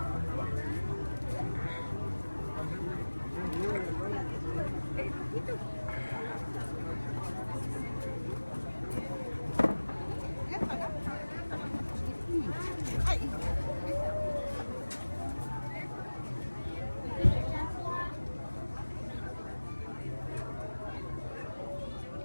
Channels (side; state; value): both; inverted; correlation -1.00